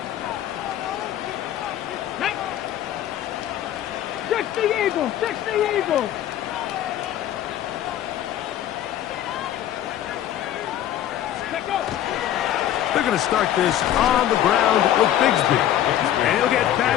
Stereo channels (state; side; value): quieter; right; 11.7 dB